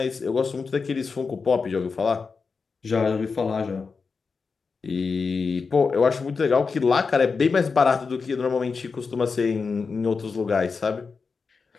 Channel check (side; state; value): right; quieter; 4.9 dB